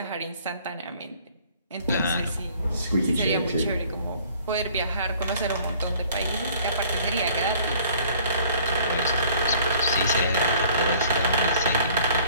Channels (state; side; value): inverted; both; correlation -0.55